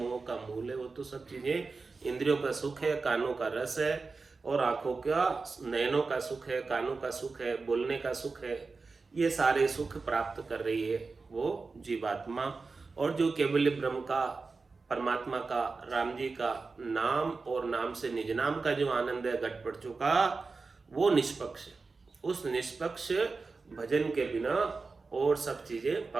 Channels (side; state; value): left; quieter; 4.2 dB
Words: का मूल है। वो तो सब चीजें इंद्रियों का सुख है, कानों का रस है, और आंखों का नयनों का सुख है, कानों का सुख है, बोलने का सुख है। ये सारे सुख प्राप्त कर रही है वो जीवात्मा। और जो केवल ब्रह्म का, परमात्मा का, राम जी का नाम और नाम से निज नाम का जो आनंद है घट पड़ चुका, वो निष्पक्ष है। उस निष्पक्ष भजन के बिना और सब चीजें